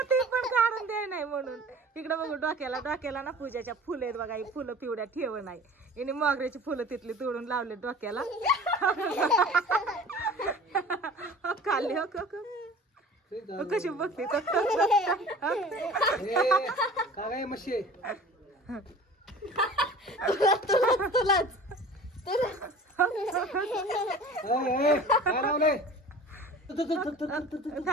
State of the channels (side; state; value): both; normal; correlation 0.42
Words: ती पण काढून दे नाही म्हणून. इकडे बघू डोक्याला डोक्याला ना पूजाच्या फुलं आहेत बघा. ही फुलं पिवड्या ठेव नाही. हिने मोगऱ्याची फुलं तिथली तोडून लावले डोक्याला. खाल्ली. हो कशी बघते. तुलाच